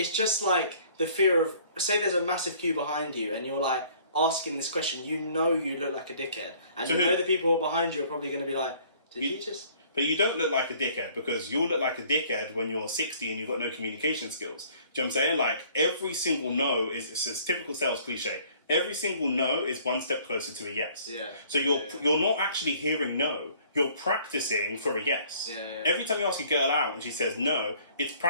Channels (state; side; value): inverted; both; correlation -0.56